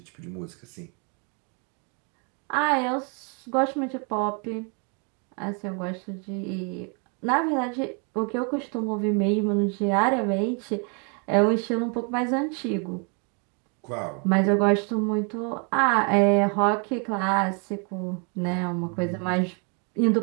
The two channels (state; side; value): quieter; left; 37.0 dB